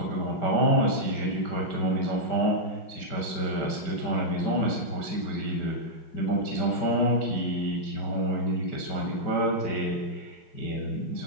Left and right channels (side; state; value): right; late; 5.2 ms